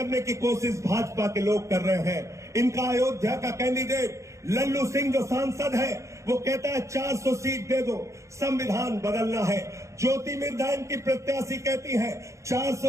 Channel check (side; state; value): left; late; 0.15 ms